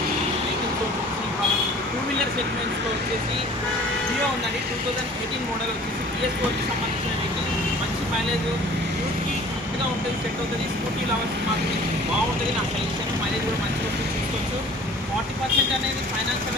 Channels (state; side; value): normal; both; correlation 0.48